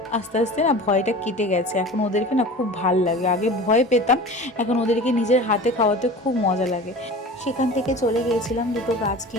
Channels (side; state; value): both; normal; correlation 0.37